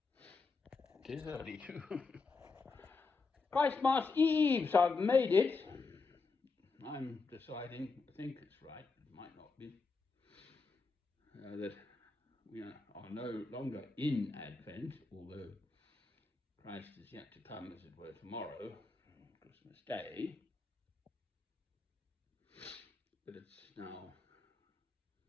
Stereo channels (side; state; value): right; quieter; 4.3 dB